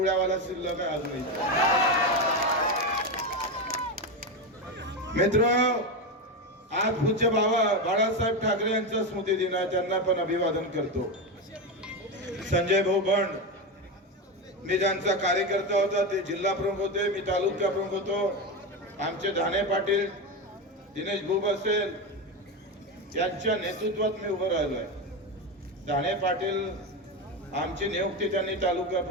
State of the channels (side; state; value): both; normal; correlation 0.14